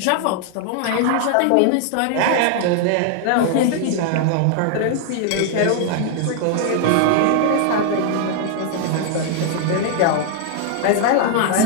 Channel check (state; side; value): different; both; correlation 0.00